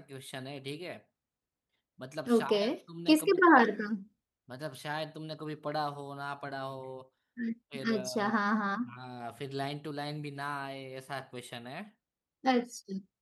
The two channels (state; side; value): identical; both; correlation 1.00